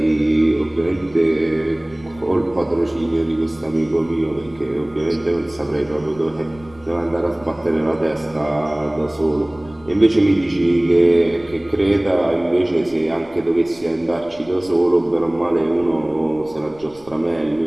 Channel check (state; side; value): noise; left; rumble, 24 dB below the sound